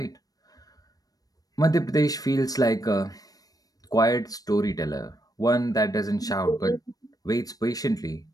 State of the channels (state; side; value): late; right; 0.18 ms